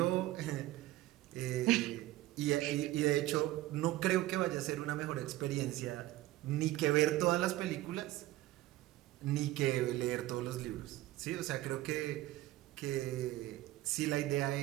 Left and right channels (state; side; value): quieter; left; 16.6 dB